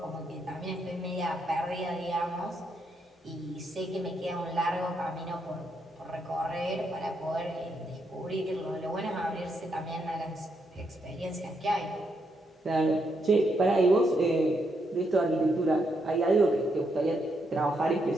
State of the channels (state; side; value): normal; both; correlation 0.79